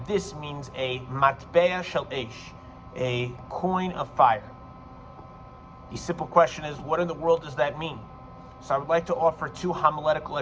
this means a matbea shel esh, a coin of fire. The simple question is, what in the world does that mean? So I would like to offer two homiletical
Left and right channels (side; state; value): both; identical; correlation 1.00